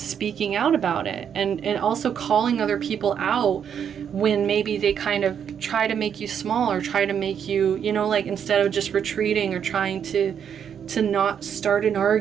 out about it. And also calling other people out when maybe they kind of try to make you small, or try to make you, you know, like instead of just retreating or trying to not start an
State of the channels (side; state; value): left; quieter; 8.1 dB